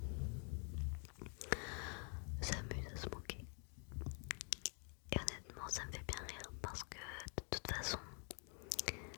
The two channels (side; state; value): right; quieter; 39.9 dB